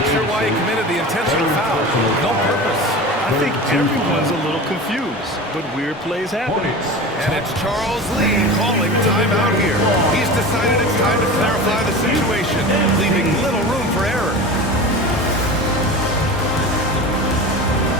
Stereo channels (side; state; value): both; normal; correlation 0.32